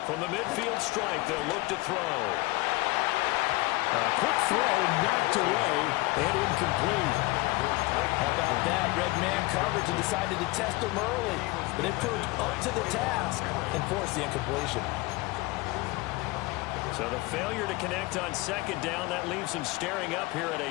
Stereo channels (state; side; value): quieter; right; 22.0 dB